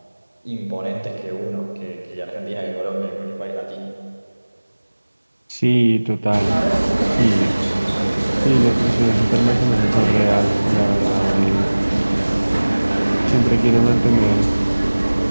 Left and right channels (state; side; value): inverted; both; correlation -1.00